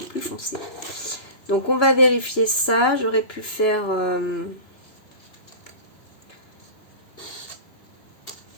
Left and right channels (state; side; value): late; right; 2.9 ms